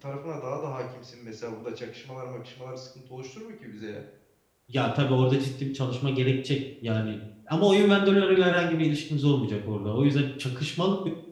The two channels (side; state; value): both; identical; correlation 1.00